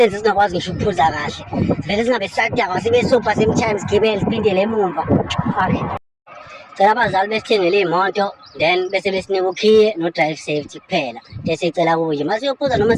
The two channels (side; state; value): both; identical; correlation 1.00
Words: singakwazi ngisho ukuphuza kahle vele singabe sisadakwa sibe supha sometimes gibele siphindele emumva cela abazali besithengele iy'moto then bese besinika ukhiye no-drive safety kuphela bese icela kubo nje masiyophuza noma